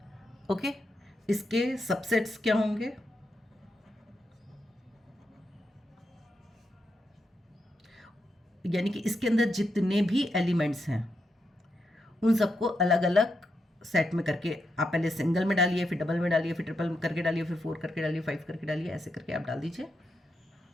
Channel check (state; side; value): normal; both; correlation 0.84